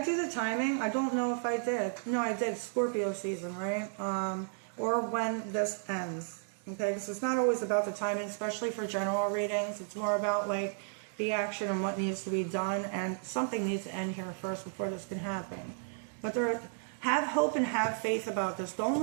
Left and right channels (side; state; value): left; silent; digital silence